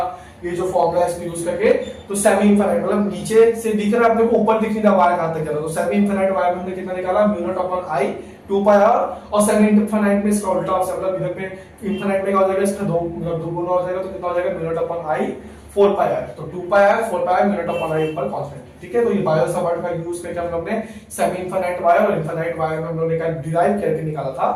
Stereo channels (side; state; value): both; identical; correlation 1.00